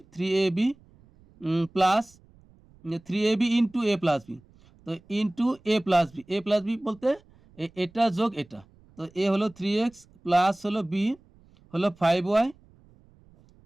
3ab plus 3ab into A plus B, তো ইন্টু এ প্লাস বি বলতে এটা যোগ এটা, তো এ হলো 3x প্লাস হলো বি হলো 5y,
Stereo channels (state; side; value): noise; right; rumble, 28 dB below the sound